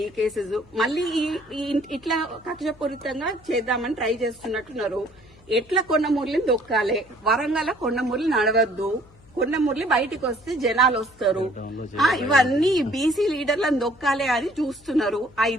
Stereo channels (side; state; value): left; noise; hum, 27 dB below the sound